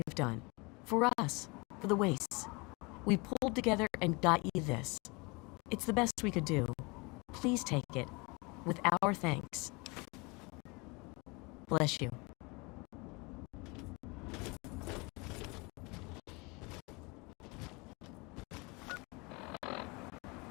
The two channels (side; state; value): right; quieter; 27.7 dB